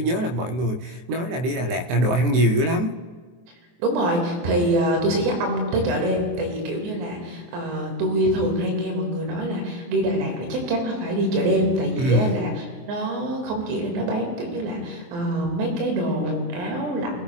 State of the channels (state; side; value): late; left; 23 ms